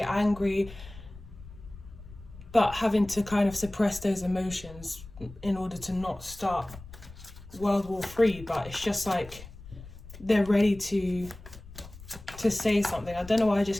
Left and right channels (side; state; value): left; noise; rumble, 17 dB below the sound